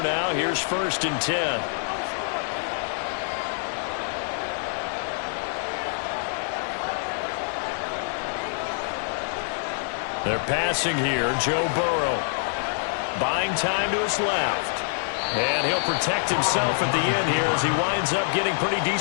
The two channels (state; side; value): silent; right; digital silence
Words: now, here's 1st and 10. They're passing here. Joe Burrow. Buying time to his left. And he'll protect himself at the end here as he winds up getting pretty